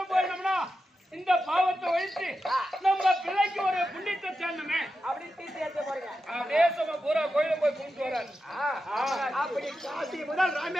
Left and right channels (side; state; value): both; normal; correlation 0.90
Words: போயிடணும்னா இந்த பாவத்தை ஒழித்து நம்ம பிள்ளைக்கு ஒரு புண்ணியத்தை சேர்ந்தமே அப்படி தீர்க்க யாத்திரை போறீங்க தேசமா பூரா கோயிலும் போய் கும்பிட்டு வராரு அப்படி காசி முதல்